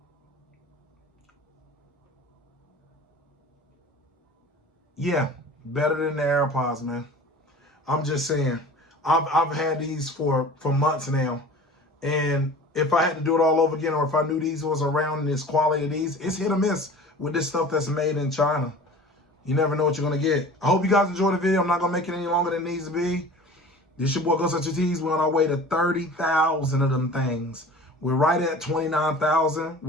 Yeah, better than the AirPods, man. I'm just saying. I've had these for months now, and if I had to do it all over again, or if I knew these was around this quality of these, it's hit or miss with this stuff that's made in China. You never know what you're gonna get. I hope you guys enjoyed the video. I'm not gonna make it any longer than it needs to be. This your boy Go Such Your Tees. We're on our way to 30,000 of them things. We're right at 29,000.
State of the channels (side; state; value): both; normal; correlation 0.41